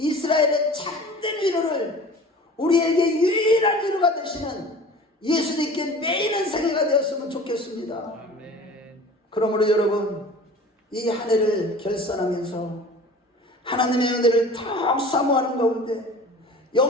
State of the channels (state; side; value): normal; both; correlation 0.42